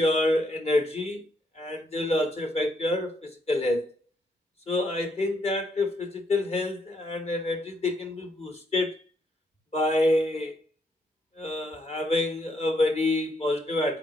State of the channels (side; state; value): both; normal; correlation 0.75